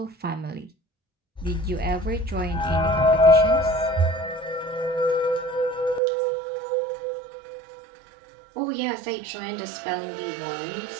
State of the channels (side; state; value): left; drops out; at 6.0 s